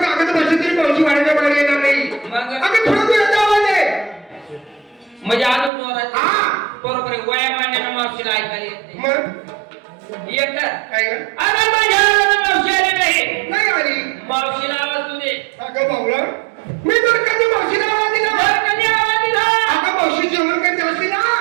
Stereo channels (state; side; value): drops out; left; at 5.7 s